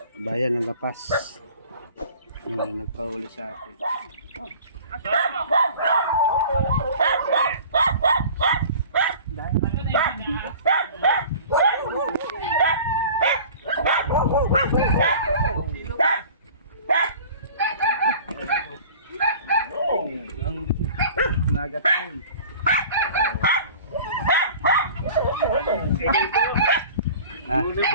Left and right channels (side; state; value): both; inverted; correlation -0.43